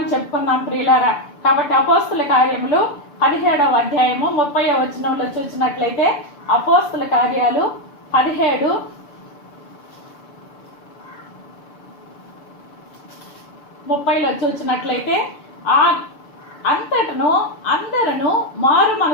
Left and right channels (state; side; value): late; right; 6.8 ms